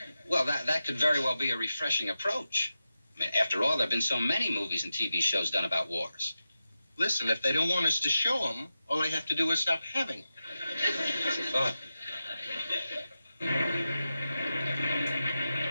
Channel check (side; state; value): both; inverted; correlation -0.92